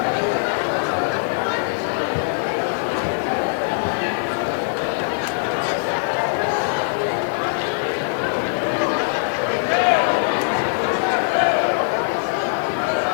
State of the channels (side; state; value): right; silent; digital silence